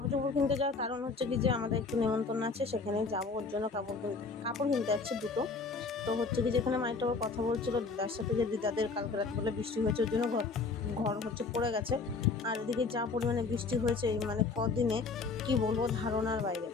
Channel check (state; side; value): quieter; right; 4.3 dB